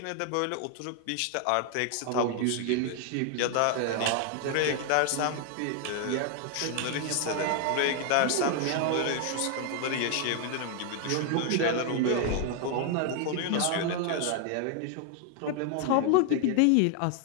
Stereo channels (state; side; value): different; both; correlation 0.00